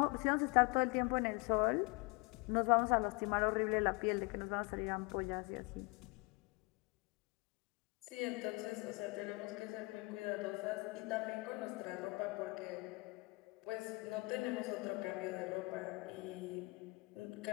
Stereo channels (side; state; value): right; quieter; 27.2 dB